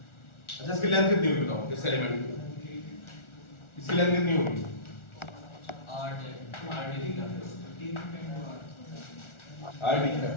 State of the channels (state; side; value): late; right; 1.4 ms